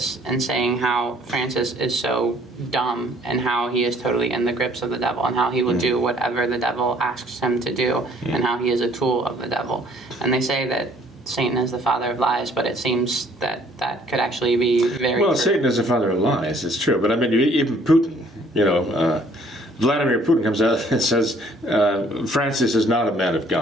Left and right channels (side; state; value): both; normal; correlation 0.60